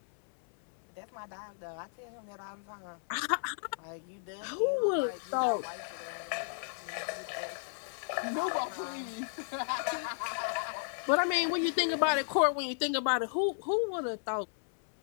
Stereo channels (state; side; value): silent; right; 55 dB below the other